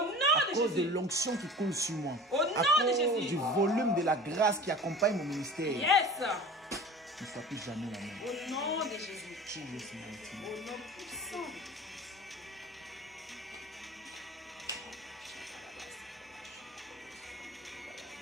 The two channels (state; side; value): normal; both; correlation 0.39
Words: À de cause de Jésus. l'onction qui coule sur moi. Au À nom de cause Jésus. du volume de la grâce qui accompagne mon ministère. Yes. Ne sois plus jamais la même. Au nom de Jésus. Jesus mighty name. Au nom puissant de Jésus.